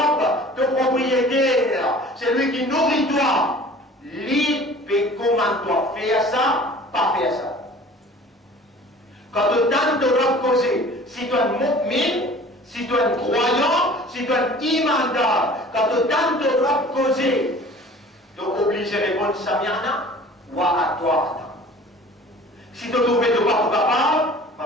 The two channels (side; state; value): both; normal; correlation 0.46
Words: te propriétaire. C'est lui qui nourrit toi. Libre et commande-toi. Faire ça, pas faire ça. Quand tu tentes de reposer, si tu es un mu'min, si tu es un croyant, si tu es un imandar, quand tu tentes de reposer, tu es obligé de répondre Samiana ou à toi. Si tu trouves de pas capable,